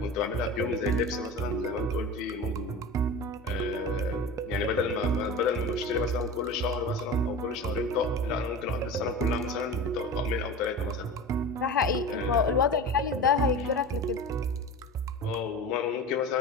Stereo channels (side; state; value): both; normal; correlation 0.32